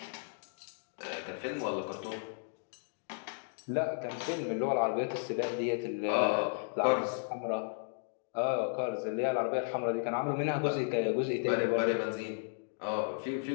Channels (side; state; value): right; silent; digital silence